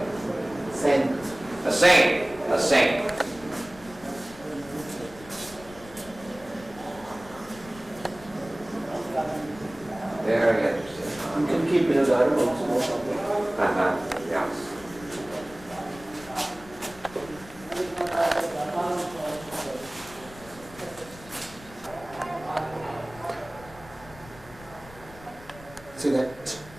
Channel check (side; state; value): left; noise; rumble, 19 dB below the sound